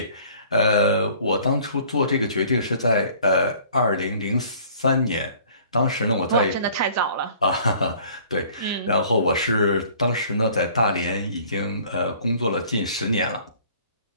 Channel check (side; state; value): both; inverted; correlation -0.53